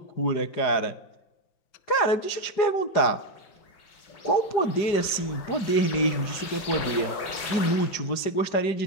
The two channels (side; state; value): right; late; 5.0 ms